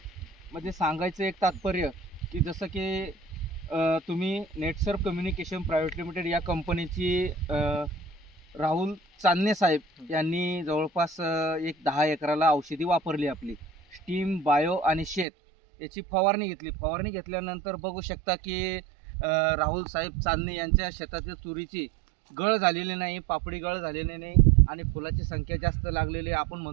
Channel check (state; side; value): drops out; left; at 15.2 s